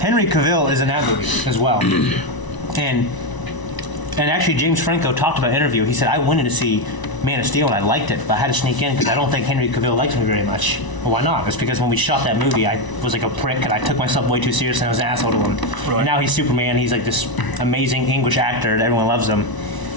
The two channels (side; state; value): right; late; 1.0 ms